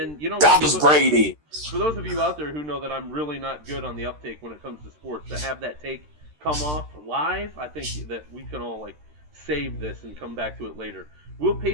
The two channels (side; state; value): left; late; 13 ms